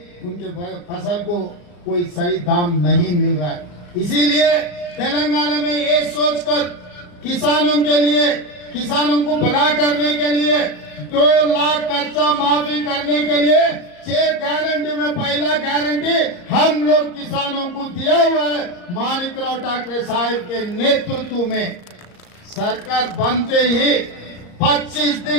उनके फसल को कोई सही दाम नहीं मिल रहा है। इसीलिए तेलंगाना में ये सोचकर किसानों के लिए, किसानों को भला करने के लिए 2 लाख कर्जा माफी करने के लिए 6 गारंटी में पहला गारंटी हम लोग किसानों को दिया हुआ है। माणिकराव ठाकरे साहब के नेतृत्व में सरकार बनते ही 25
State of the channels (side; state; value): right; late; 34 ms